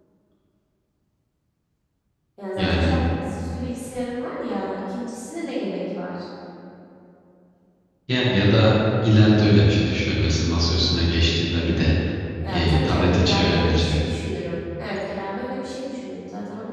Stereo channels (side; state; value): both; identical; correlation 1.00